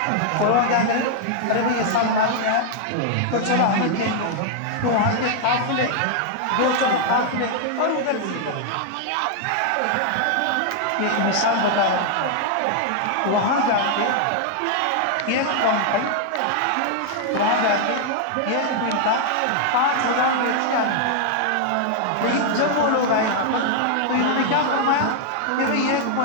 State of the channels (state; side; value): different; both; correlation 0.00